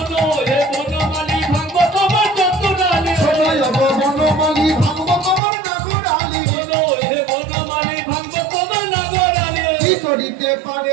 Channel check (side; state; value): left; drops out; at 5.4 s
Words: हे बनमाली भागवत তোমার চতুরালি সোনো यो बनमाली भागवत তোমার নাগরালি सोनो हे बनमाली भागवत তোমার নাগরালি কি করিতে পারে